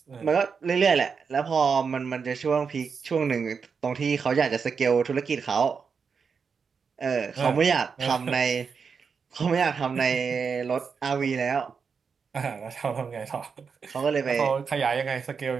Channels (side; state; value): left; quieter; 5.8 dB